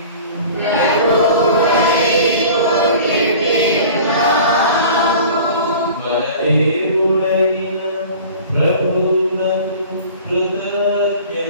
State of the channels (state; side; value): inverted; both; correlation -0.42